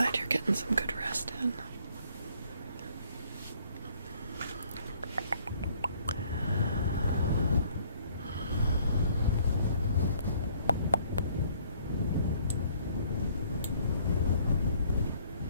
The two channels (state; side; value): inverted; both; correlation -0.62